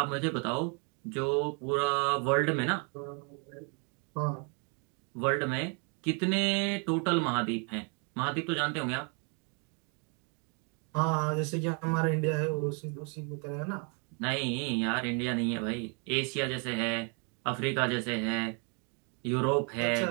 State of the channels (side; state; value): left; quieter; 36.6 dB